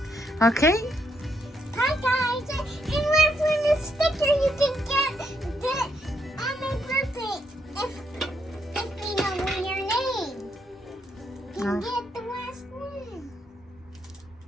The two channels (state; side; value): normal; both; correlation 0.76